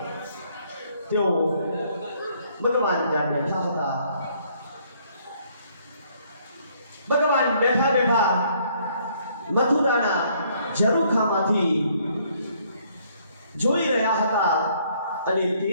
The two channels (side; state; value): both; inverted; correlation -0.65